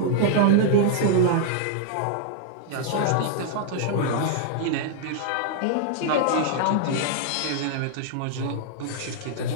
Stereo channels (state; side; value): different; both; correlation -0.01